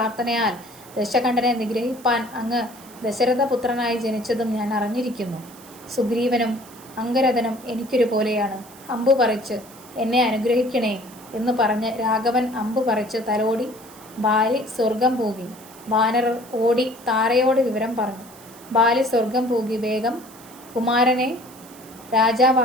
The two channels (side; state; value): right; noise; hiss, 21 dB below the sound